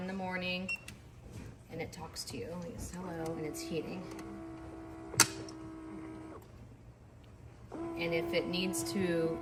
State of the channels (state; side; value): identical; both; correlation 1.00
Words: the morning, and it talks to you. It's hello, and it's heating. And if it needs to